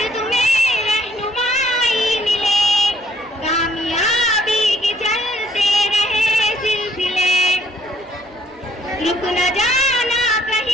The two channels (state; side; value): normal; both; correlation 0.63